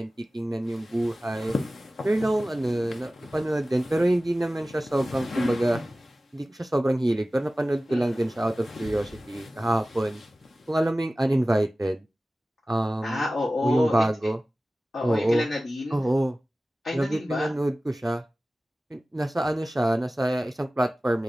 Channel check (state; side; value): normal; both; correlation 0.96